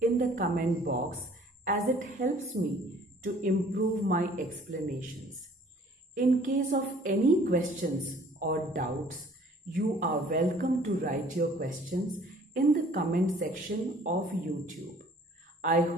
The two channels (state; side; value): normal; both; correlation 0.54